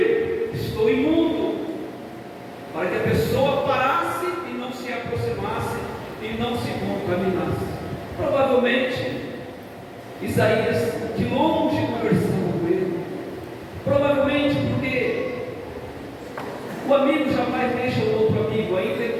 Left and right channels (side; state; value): both; identical; correlation 1.00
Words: estou imundo, para que a pessoa parasse e não se aproximasse e não se contaminasse. Provavelmente Isaías de longe conversando com ele, provavelmente porque o amigo jamais deixa o outro amigo, ainda